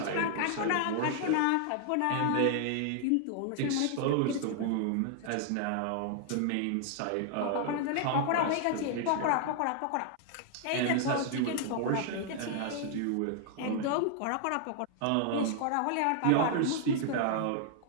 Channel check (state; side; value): different; both; correlation 0.00